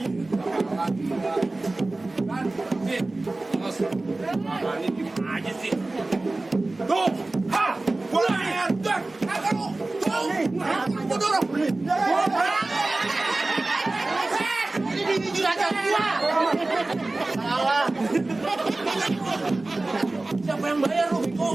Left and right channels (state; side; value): quieter; left; 3.0 dB